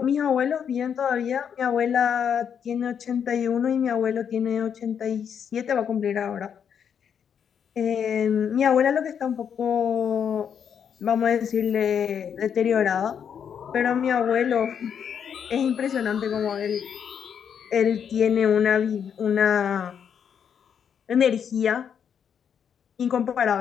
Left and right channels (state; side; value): quieter; right; 7.8 dB